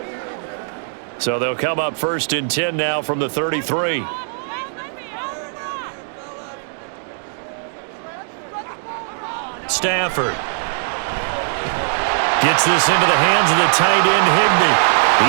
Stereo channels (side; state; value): left; silent; digital silence